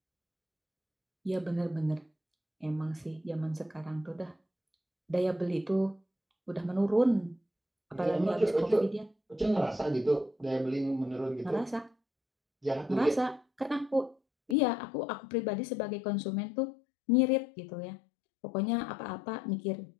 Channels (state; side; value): drops out; right; at 14.6 s